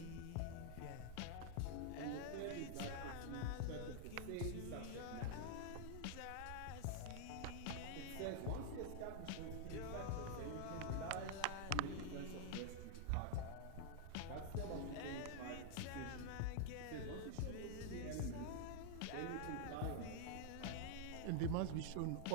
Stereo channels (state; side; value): different; both; correlation -0.01